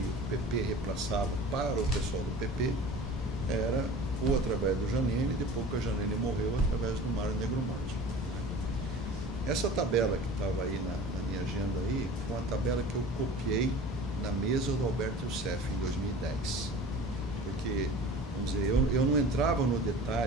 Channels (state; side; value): normal; both; correlation 0.40